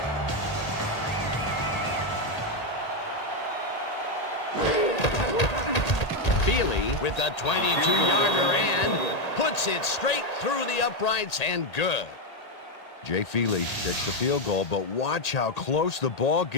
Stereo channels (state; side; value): late; right; 1.8 ms